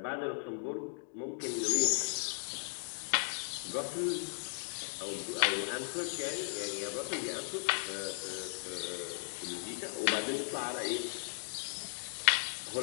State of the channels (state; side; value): silent; right; digital silence